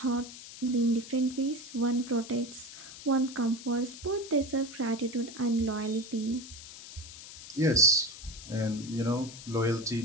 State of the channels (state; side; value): noise; left; hiss, 14 dB below the sound